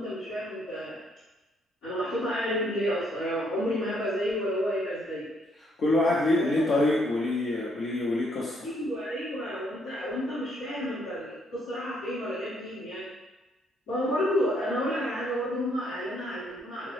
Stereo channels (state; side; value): normal; both; correlation 0.70